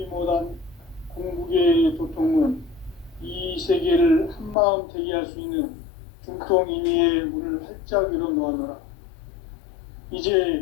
못한 궁극의 도통은 이 세계를 한마음 되게 할 수 있는 중통인의의 문을 활짝 열어놓았노라.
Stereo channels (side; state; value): right; drops out; at 4.5 s